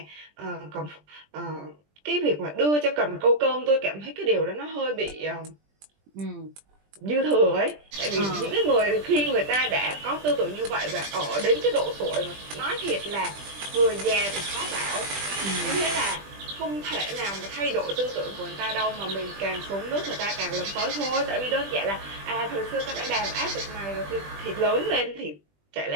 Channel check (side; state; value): left; late; 20 ms